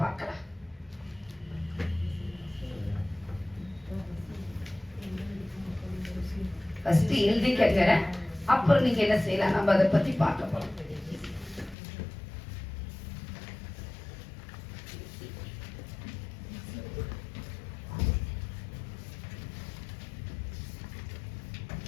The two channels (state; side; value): drops out; right; at 11.8 s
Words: பார்க்கலாம். ஃபர்ஸ்ட் எழுதிக்கங்க, அப்புறம் நீங்க என்ன செய்யலாம், நம்ம அதை பத்தி பார்க்க போறோம்.